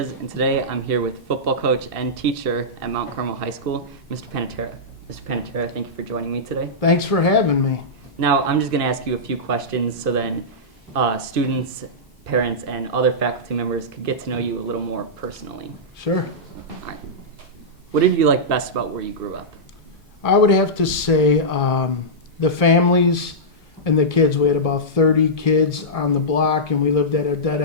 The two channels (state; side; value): normal; both; correlation -0.13